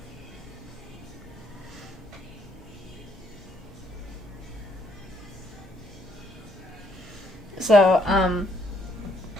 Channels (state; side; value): normal; both; correlation 0.69